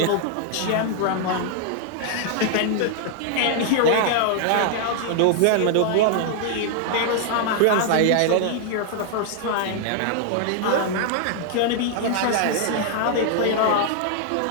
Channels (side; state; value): both; different; correlation 0.00